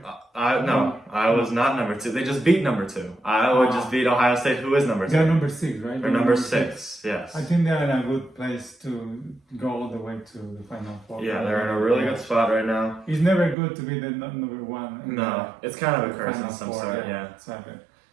Iowa's not number 2. They just beat number 2. Iowa just beat Ohio State, who is number 2. They're number 6, right? They're number 6. Yes. I think they're in a good place to go all the way to the Final Four. Yeah, they're in a really good spot right now. It's never good to be the number 1. No, it's kind of a curse in some sort. Yeah. Exactly.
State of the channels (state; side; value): drops out; left; at 13.6 s